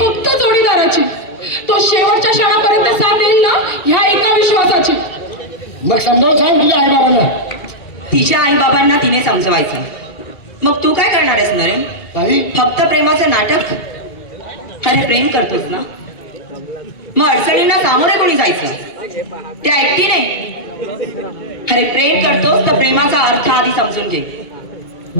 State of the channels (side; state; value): right; late; 2.8 ms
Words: जोडीदाराची. तो शेवटच्या क्षणापर्यंत साथ देईल ना ह्या एका विश्वासाची. मग समजावून सांग तुझ्या आई बाबांना. तिच्या आई बाबांना तिने समजवायचं. मग तू काय करणार आहेस नरेन? ताई फक्त प्रेमाचं नाटक? अरे प्रेम करतोस ना मग अडचणींना सामोरे कोणी जायचं? त्या एकटीने? अरे प्रेम करतोस तर प्रेमाचा अर्थ आधी समजून घे.